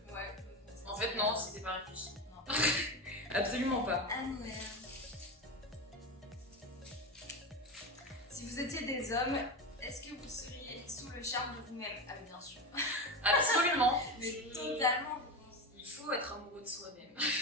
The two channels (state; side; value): normal; both; correlation 0.21